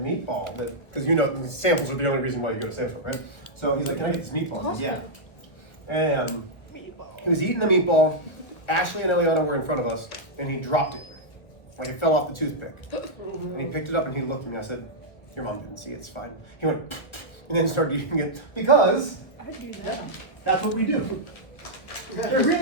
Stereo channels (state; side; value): late; right; 1.5 ms